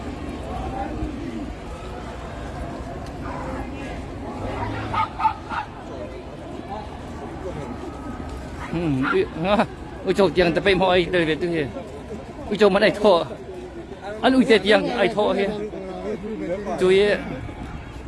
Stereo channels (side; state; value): both; identical; correlation 1.00